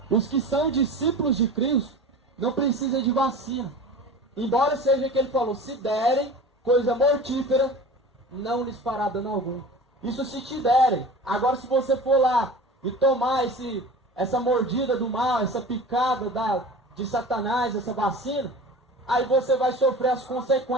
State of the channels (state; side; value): normal; both; correlation 0.36